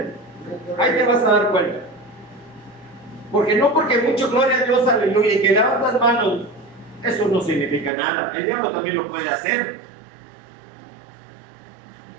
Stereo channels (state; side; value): drops out; left; at 7.9 s